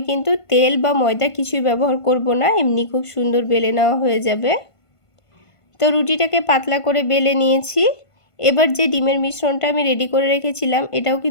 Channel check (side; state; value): right; late; 1.5 ms